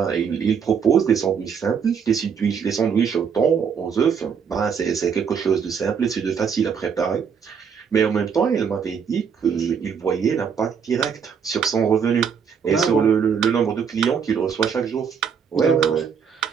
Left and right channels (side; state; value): left; quieter; 6.8 dB